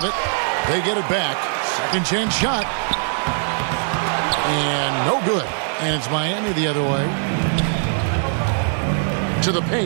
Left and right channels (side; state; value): left; silent; 60 dB below the other